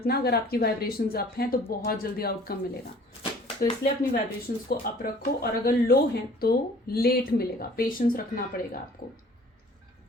अगर आपकी वाइब्रेशंस अप हैं तो बहुत जल्दी आउटकम मिलेगा, तो इसलिए अपनी वाइब्रेशंस को अप रखो, और अगर लो हैं तो लेट मिलेगा, पेशेंस रखना पड़ेगा आपको।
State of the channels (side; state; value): both; normal; correlation 0.52